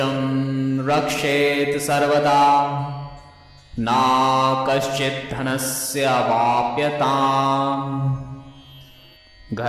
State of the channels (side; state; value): both; identical; correlation 1.00